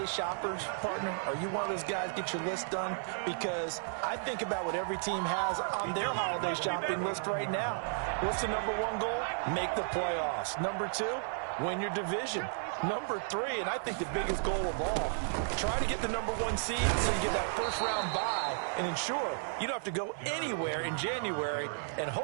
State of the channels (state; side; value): silent; left; 55 dB below the other